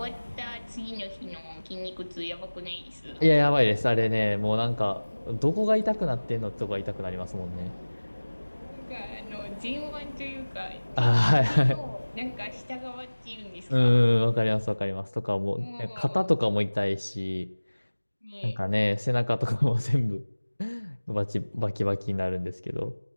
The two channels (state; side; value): inverted; both; correlation -1.00